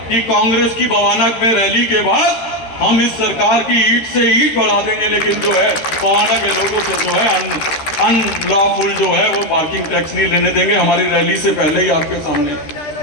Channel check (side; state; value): right; late; 13 ms